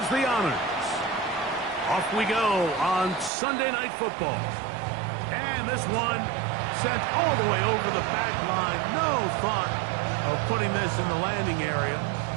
the honors. Off we go on Sunday Night Football. And this one sent all the way over the back line. No thought of putting this in the landing area.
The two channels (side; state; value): left; drops out; at 3.3 s